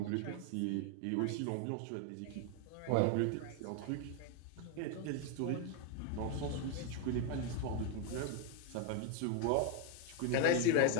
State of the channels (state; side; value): different; both; correlation 0.01